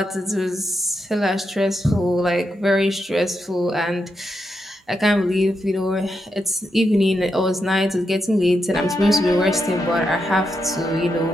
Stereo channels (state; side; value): normal; both; correlation 0.84